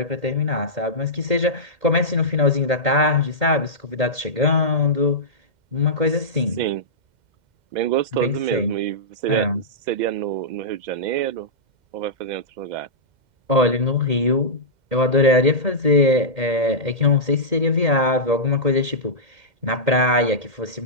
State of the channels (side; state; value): left; late; 2.1 ms